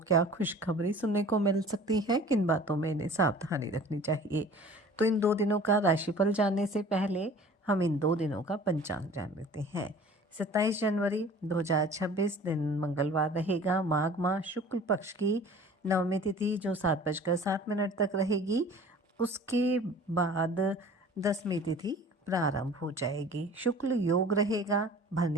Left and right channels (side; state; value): both; normal; correlation 0.45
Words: खुशखबरी सुनने को मिल सकती है, किन बातों में इन्हें सावधानी रखनी चाहिए। तो इन 2 दिनों का राशिफल जानने से पहले हम इन 2 दिनों का पंचांग जान लेते हैं। 27 जनवरी 2026 दिन मंगलवार रहेगा। माघ माह शुक्ल पक्ष की नवमी तिथि जो 7:07 तक रहेगी। उसके बाद 10वीं तिथि प्रारंभ हो जाएगी। शुक्ल योग रहेगा।